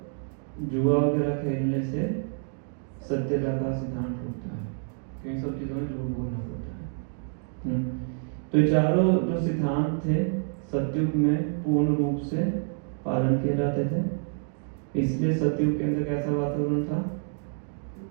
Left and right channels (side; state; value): left; silent; 60 dB below the other